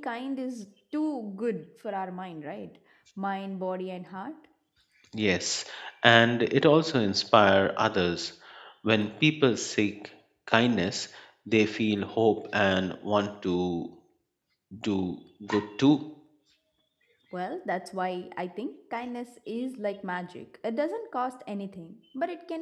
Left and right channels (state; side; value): identical; both; correlation 1.00